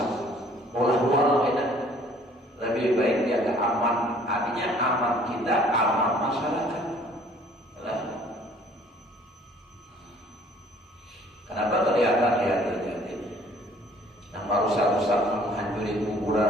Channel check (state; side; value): normal; both; correlation 0.56